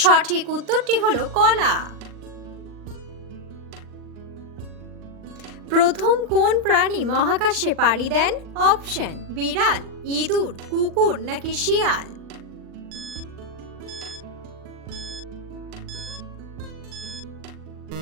সঠিক উত্তরটি হলো কলা। প্রথম কোন প্রাণী মহাকাশে পাড়ি দেন? অপশন বিড়াল, ইঁদুর, কুকুর নাকি শিয়াল?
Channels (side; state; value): left; late; 39 ms